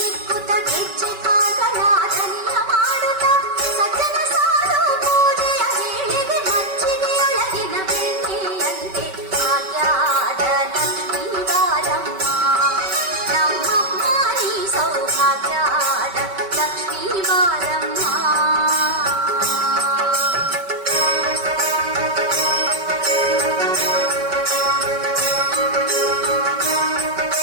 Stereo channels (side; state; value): left; late; 5.2 ms